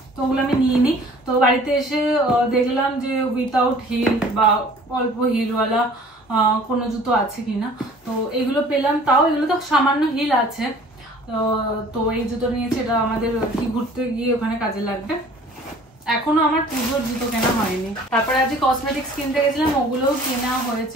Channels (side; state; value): both; normal; correlation 0.50